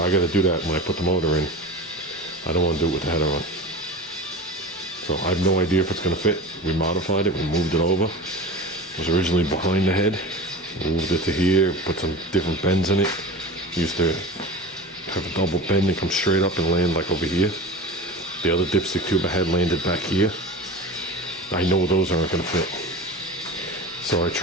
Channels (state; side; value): normal; both; correlation 0.32